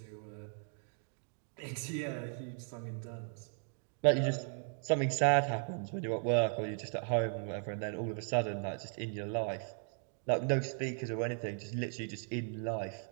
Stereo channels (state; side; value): silent; left; 53 dB below the other